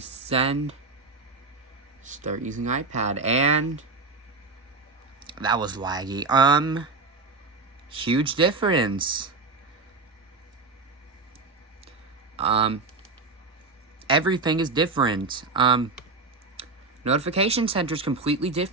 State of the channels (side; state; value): left; quieter; 3.8 dB